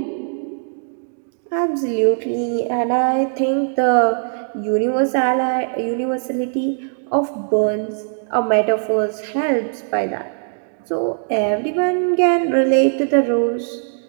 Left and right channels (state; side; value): silent; left; digital silence